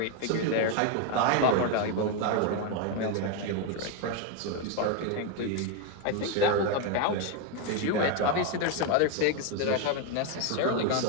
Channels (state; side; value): different; both; correlation 0.01